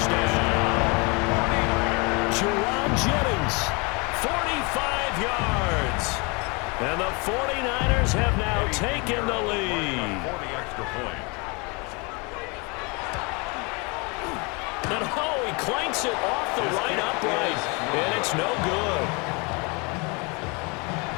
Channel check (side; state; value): right; quieter; 29.8 dB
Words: Jerome Jennings, 45 yards. And the 49ers have now taken the lead. For the extra point. And oh, he clanks it off the right upright. And it's no good.